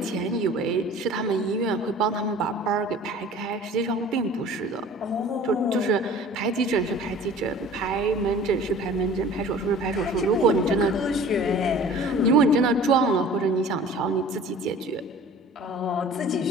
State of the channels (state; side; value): normal; both; correlation 0.45